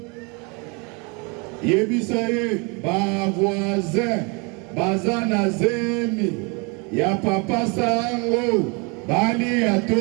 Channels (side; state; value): left; quieter; 31.4 dB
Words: Yebisaye, ba voisin, bazana zemi, ya papa sango, bali ya